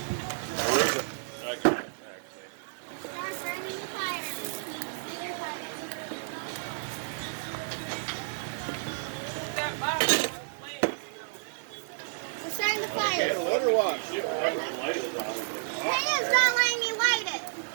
Where is it? I can't actually. Start burning the fire. We're starting the fire. Can't let her watch. Shit, whatever the light is on. Payne's not letting me light it.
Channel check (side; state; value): left; silent; digital silence